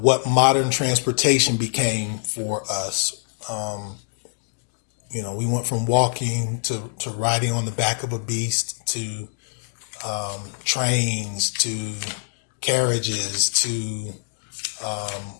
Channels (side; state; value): right; silent; digital silence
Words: modern transportation became for us. We went from walking to riding on the back of a beast to trains to carriages to